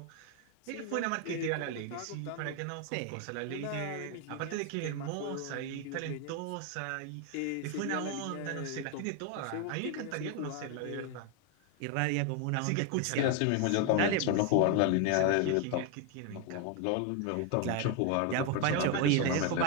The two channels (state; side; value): different; both; correlation 0.01